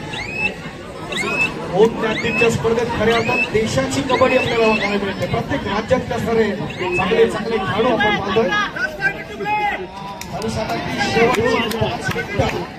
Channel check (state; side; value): identical; both; correlation 1.00